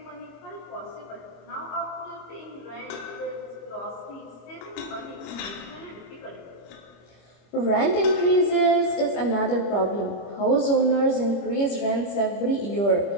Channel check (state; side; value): late; right; 25 ms